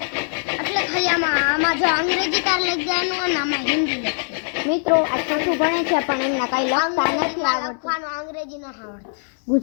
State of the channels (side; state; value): right; silent; digital silence